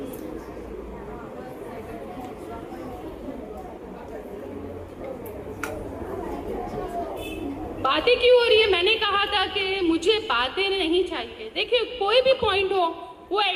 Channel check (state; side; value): identical; both; correlation 1.00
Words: बातें क्यों हो रही है? मैंने कहा था कि मुझे बातें नहीं चाहिए। देखिए, कोई भी पॉइंट हो वो